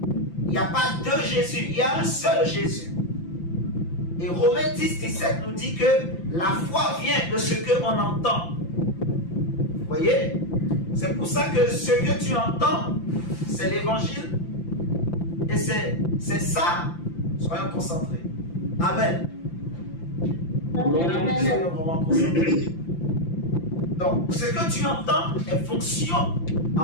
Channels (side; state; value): right; late; 5.9 ms